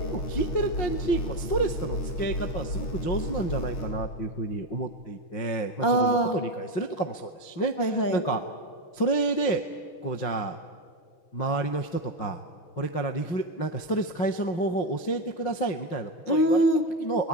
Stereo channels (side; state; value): right; late; 5.6 ms